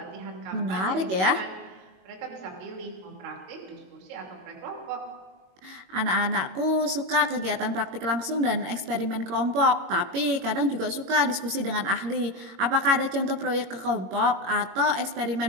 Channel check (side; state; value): left; late; 22 ms